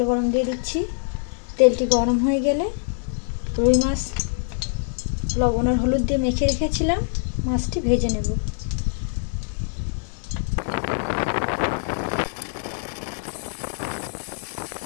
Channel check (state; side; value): silent; right; digital silence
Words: গরম দিয়ে দিচ্ছি। তেলটি গরম হয়ে গেলে রুই মাছ লবণ আর হলুদ দিয়ে মেখে রেখেছিলাম, মাছটি ভেজে নেব।